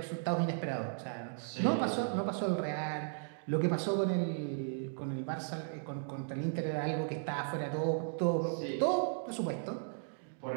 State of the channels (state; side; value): silent; left; digital silence